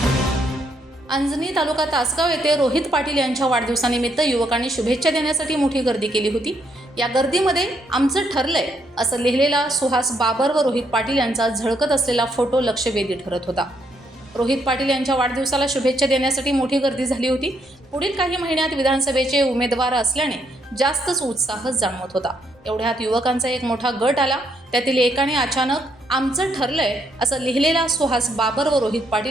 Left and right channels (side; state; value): both; normal; correlation 0.74